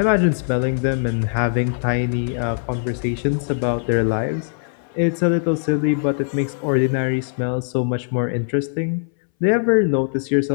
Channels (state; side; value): silent; right; 63 dB below the other